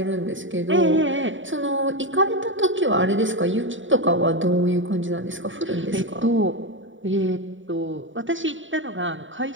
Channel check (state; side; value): late; left; 0.56 ms